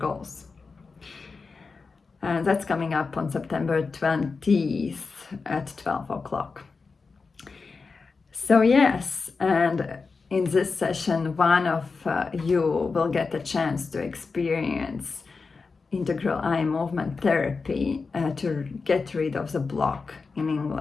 And that's coming up on September 20th at 12 o'clock. So yes, and in this session, one of you will get a chance to experience integral eye movement therapy to get rid of the block in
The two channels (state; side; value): quieter; right; 4.5 dB